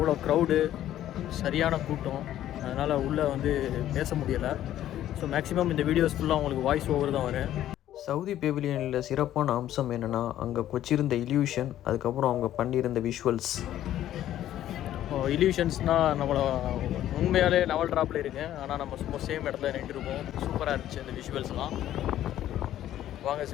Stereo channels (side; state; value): right; quieter; 12.4 dB